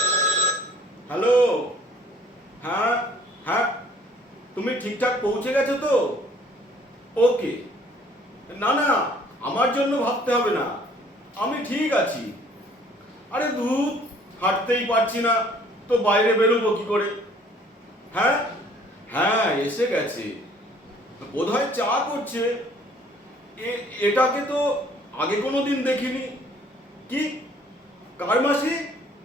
হ্যালো, হ্যাঁ হ্যাঁ, তুমি ঠিকঠাক পৌঁছে গেছো তো? ওকে, না না, আমার জন্য ভাবতে হবে না, আমি ঠিক আছি। আরে ধুর, হাঁটতেই পারছি না তো বাইরে বেরোবো কি করে? হ্যাঁ হ্যাঁ, এসে গেছে, বোধহয় চা করছে। এটাকে তো আগে কোনো দিন দেখিনি। কি, কার মাসি?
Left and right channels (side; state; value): both; normal; correlation 0.57